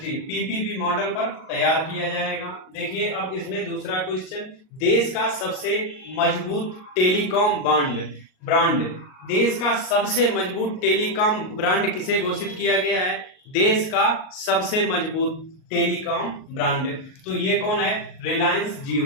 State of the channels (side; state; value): right; late; 38 ms